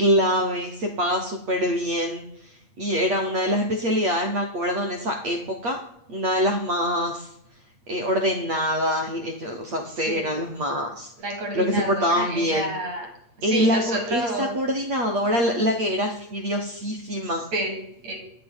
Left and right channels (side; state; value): left; late; 8.5 ms